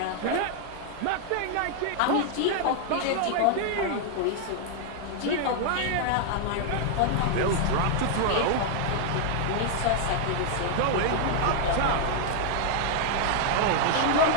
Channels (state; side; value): different; both; correlation 0.00